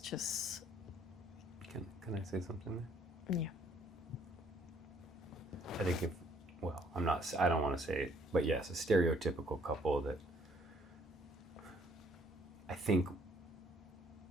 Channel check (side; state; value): both; normal; correlation 0.63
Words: just... Can I say something there? Yeah. I think I don't want to say it, but yes, a stereotypical couple that I think